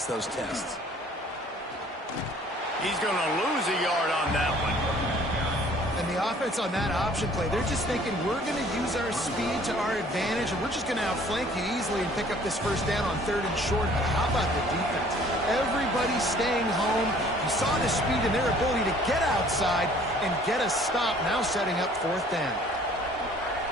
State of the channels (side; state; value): both; normal; correlation 0.55